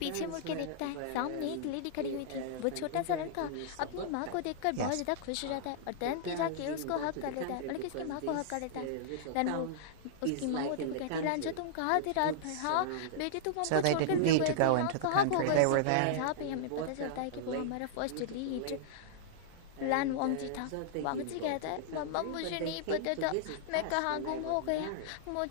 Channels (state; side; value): different; both; correlation -0.02